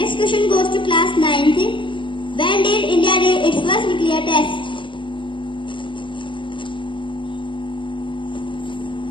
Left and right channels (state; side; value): late; right; 0.24 ms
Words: question goes to class 9th. When did India do its first nuclear test?